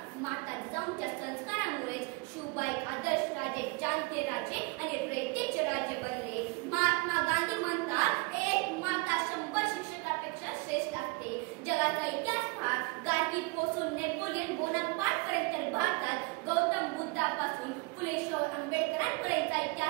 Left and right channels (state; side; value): quieter; left; 27.6 dB